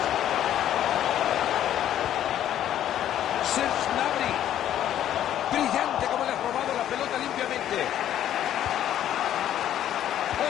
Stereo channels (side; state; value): right; quieter; 11.3 dB